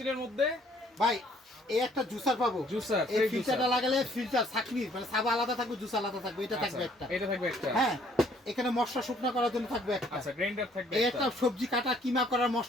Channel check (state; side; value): normal; both; correlation 0.62